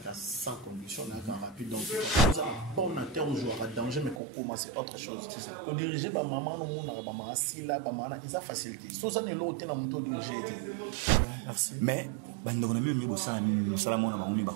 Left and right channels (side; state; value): left; drops out; at 4.2 s